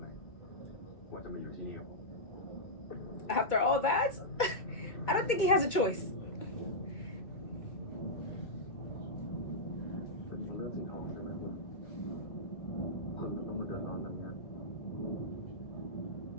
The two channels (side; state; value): right; late; 2.2 ms